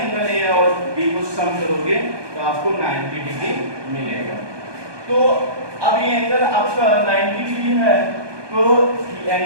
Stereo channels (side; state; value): left; late; 1.2 ms